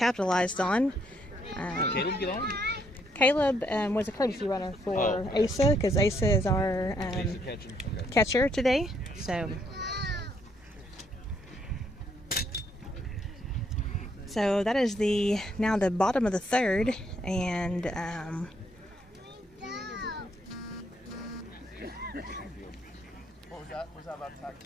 on. Caleb get on? Caleb was a courtesy runner for Asa, because Asa is our catcher today. So that is now the bottom of the 3rd, and What was that? Was that about tag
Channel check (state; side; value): normal; both; correlation 0.72